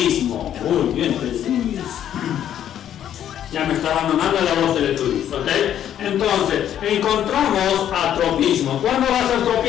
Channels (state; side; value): quieter; right; 10.4 dB